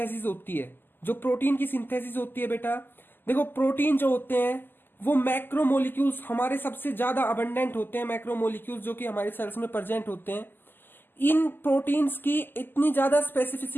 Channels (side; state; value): right; late; 0.094 ms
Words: होती है. बेटा देखो, प्रोटीन जो होते हैं वो मैक्रोमोलिक्यूल्स हमारे सबसे ज्यादा अबंडेंट होते हैं, मैक्रोमोलिक्यूल्स जो कि हमारे सेल्स में प्रेजेंट होते हैं. इन प्रोटीन्स की इतनी ज्यादा